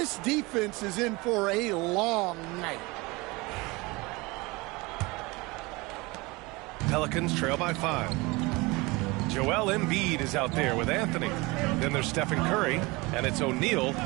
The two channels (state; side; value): quieter; left; 24.1 dB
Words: defense is in for a long night. Pelicans trail by 5. Joel Embiid is out there with Anthony. Then there's Stephen Curry, and it's O'Neal